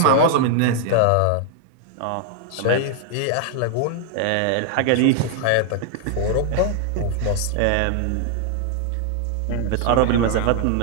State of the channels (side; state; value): both; different; correlation 0.00